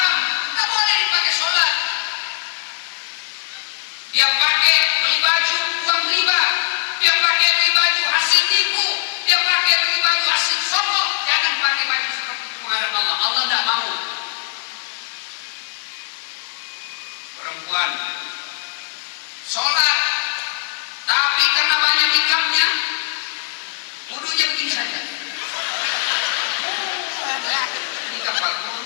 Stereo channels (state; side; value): silent; right; digital silence